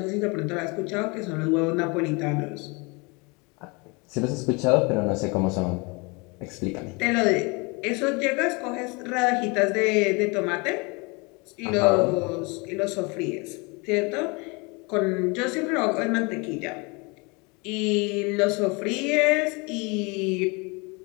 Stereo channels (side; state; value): right; quieter; 28.7 dB